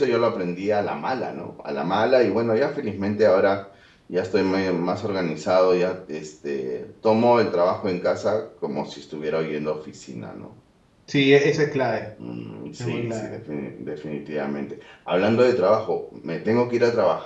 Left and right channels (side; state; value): both; identical; correlation 1.00